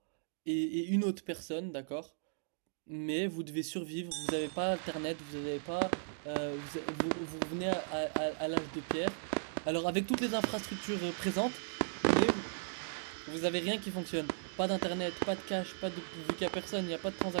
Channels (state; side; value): silent; left; digital silence